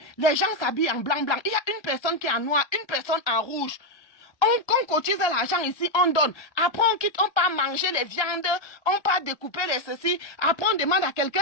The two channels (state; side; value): late; right; 1.2 ms